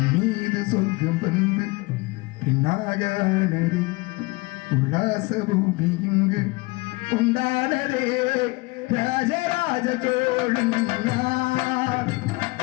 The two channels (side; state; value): right; quieter; 24.1 dB